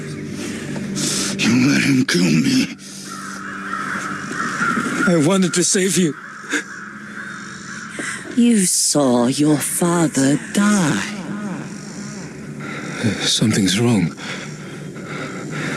You let him kill me. I wanted to save you. You saw your father die. Something's wrong.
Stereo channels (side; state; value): both; identical; correlation 1.00